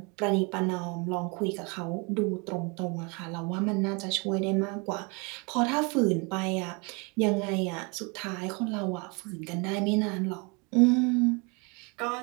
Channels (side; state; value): left; quieter; 30.9 dB